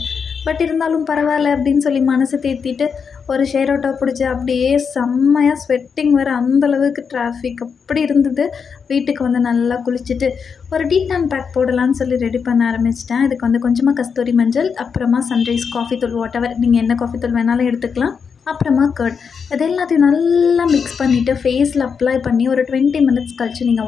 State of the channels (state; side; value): quieter; right; 6.2 dB